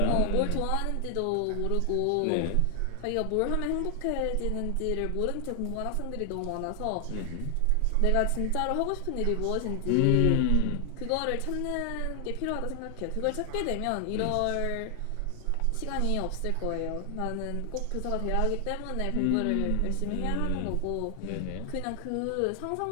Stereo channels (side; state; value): both; different; correlation 0.00